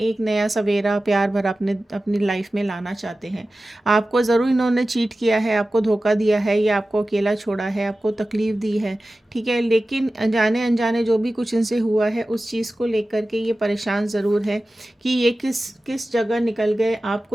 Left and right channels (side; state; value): both; normal; correlation 0.95